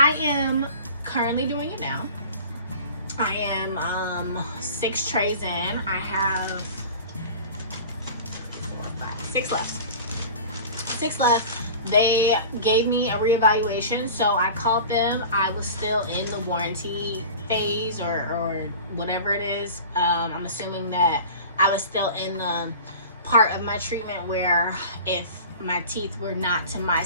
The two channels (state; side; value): inverted; both; correlation -0.38